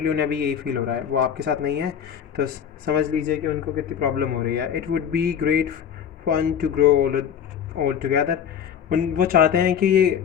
उन्हें अभी यही फील हो रहा है, वो आपके साथ नहीं है। तो समझ लीजिए कि उनको कितनी प्रॉब्लम हो रही है। It would be great fun to grow old together. वो चाहते हैं कि ये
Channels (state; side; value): quieter; right; 8.4 dB